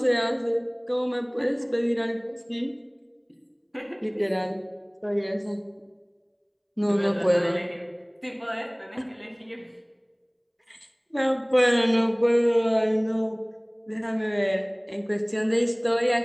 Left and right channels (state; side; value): identical; both; correlation 1.00